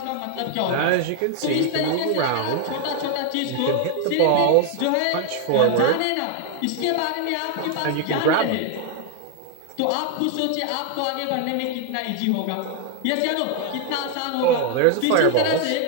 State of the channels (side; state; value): both; different; correlation 0.00